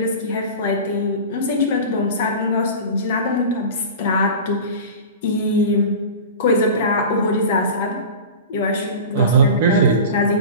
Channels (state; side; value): inverted; both; correlation -0.32